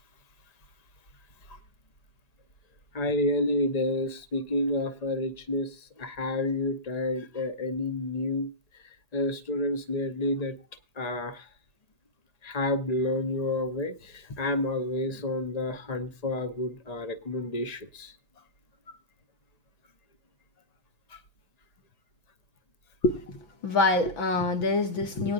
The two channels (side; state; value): right; late; 1.9 ms